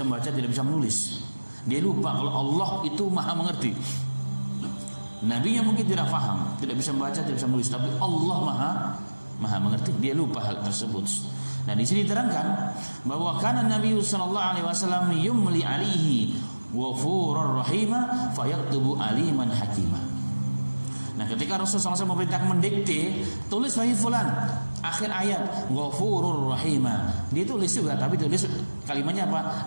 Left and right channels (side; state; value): both; inverted; correlation -1.00